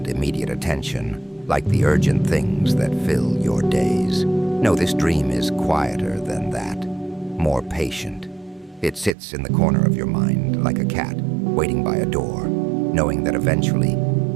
immediate attention, like the urgent things that fill your days. No, this dream is quieter than that, more patient. It sits in the corner of your mind like a cat, waiting by a door, knowing that eventually,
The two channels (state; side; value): drops out; left; at 9.2 s